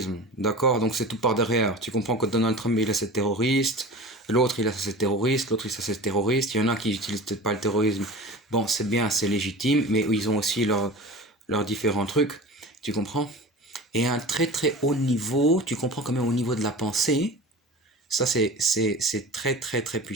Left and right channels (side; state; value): both; normal; correlation 0.35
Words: d'accord, donc c'est tout par derrière. Tu comprends que Donald Trump il a ses terroristes, l'autre il a ses terroristes, l'autre il a ses terroristes, il y en a qui n'utilisent peut-être pas le terrorisme. Bon, c'est bien, c'est légitime, mais ils ont aussi leurs différents trucs, tu comprends? Et à un très très haut niveau, tu comprends quand même au niveau de la pensée, ça c'est très très très